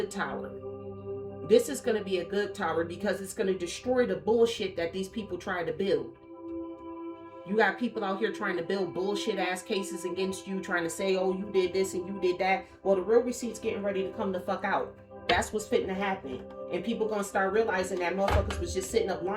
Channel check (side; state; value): both; identical; correlation 1.00